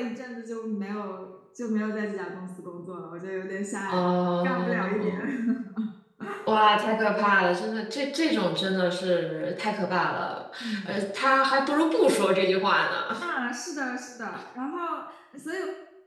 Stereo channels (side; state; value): both; identical; correlation 1.00